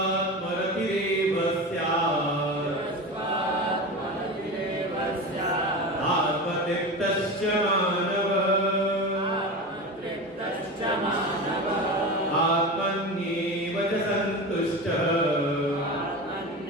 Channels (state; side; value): normal; both; correlation 0.26